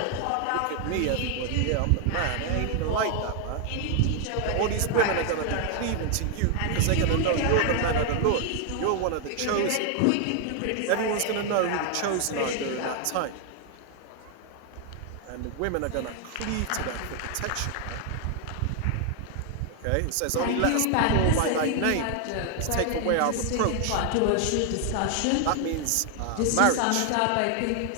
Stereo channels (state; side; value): different; both; correlation 0.00